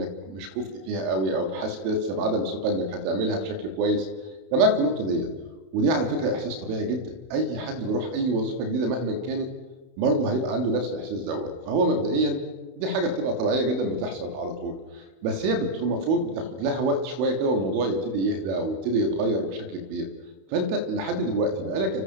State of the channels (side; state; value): left; late; 32 ms